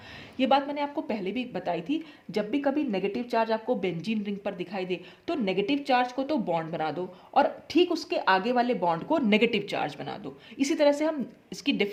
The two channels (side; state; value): both; identical; correlation 1.00